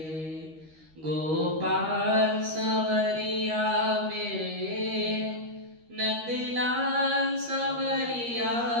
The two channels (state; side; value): late; left; 13 ms